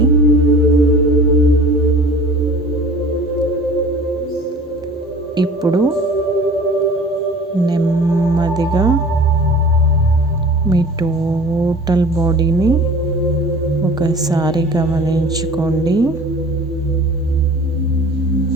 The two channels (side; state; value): both; normal; correlation 0.44